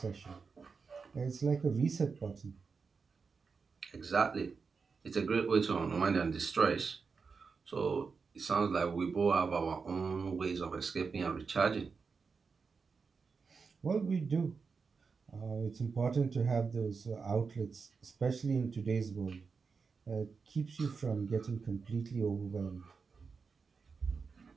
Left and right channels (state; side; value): quieter; left; 5.1 dB